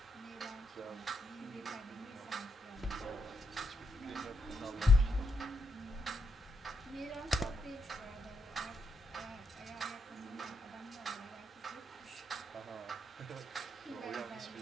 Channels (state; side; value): normal; both; correlation 0.79